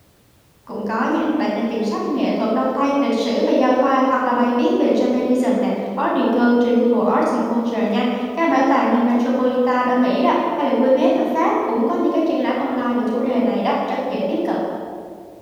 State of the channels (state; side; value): identical; both; correlation 1.00